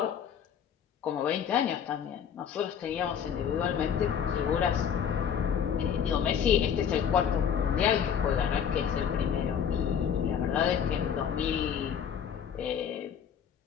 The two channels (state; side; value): quieter; right; 8.1 dB